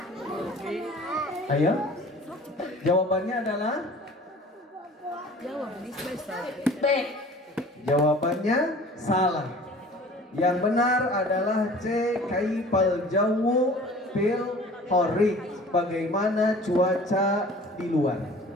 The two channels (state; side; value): normal; both; correlation 0.46